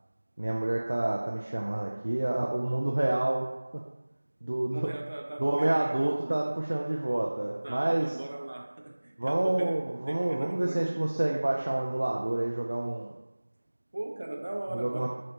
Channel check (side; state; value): both; inverted; correlation -1.00